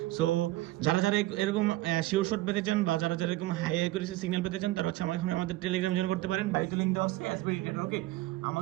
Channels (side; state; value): left; quieter; 17.4 dB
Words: সো যারা যারা এরকম শিওর শট পেতে চান বা যারা যারা এরকম হাই হাই করে সিগন্যাল পেতে চান তারা হচ্ছে আমাদের টেলিগ্রাম জয়েন করতে পারেন। বাইরে লিঙ্ক দেওয়া আছে এসবিডি ট্রেডার, ওকে।